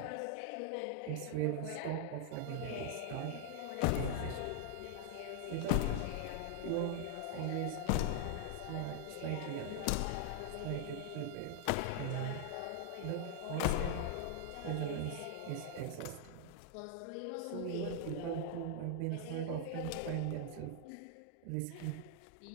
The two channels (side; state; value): both; different; correlation 0.00